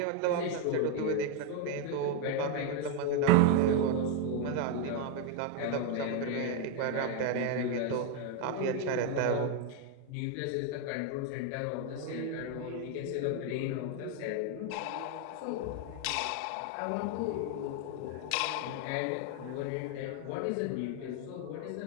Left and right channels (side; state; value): both; different; correlation 0.01